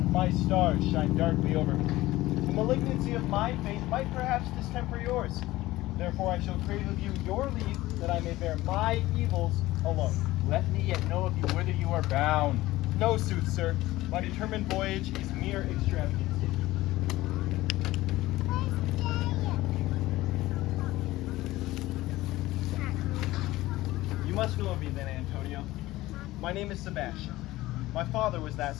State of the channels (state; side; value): quieter; right; 17.5 dB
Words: My stars shine darkly over me. The malignancy of my fate might perhaps distemper yours. Therefore I shall crave of you your leave, that I may bear my evils alone. Let me yet know of you whither you are bound. No, sooth, sir. My determined voyage is mere extravagance. You must know of me then, Antonio. My name is Sebastian. My father was that